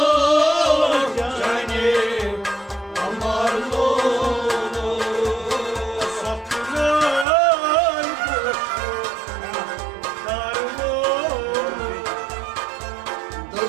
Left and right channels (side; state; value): left; drops out; at 7.2 s